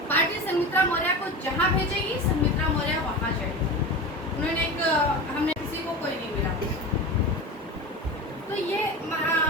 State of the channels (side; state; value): both; normal; correlation 0.27